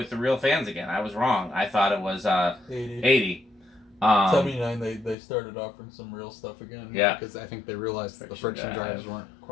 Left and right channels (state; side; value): drops out; right; at 5.2 s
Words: fans again. I was wrong. I thought it was 80. 79 they started offering some real stuff again. Yeah. Because I think they realized that the friction drives weren't